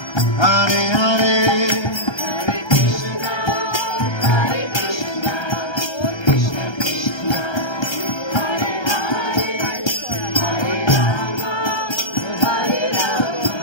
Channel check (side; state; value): right; late; 1.3 ms